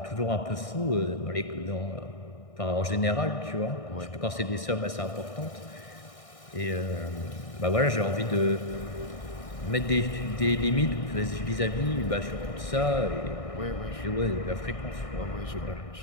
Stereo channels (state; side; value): late; right; 1.6 ms